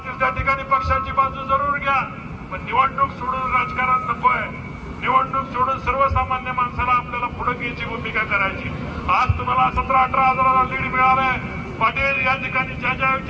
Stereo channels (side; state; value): both; identical; correlation 1.00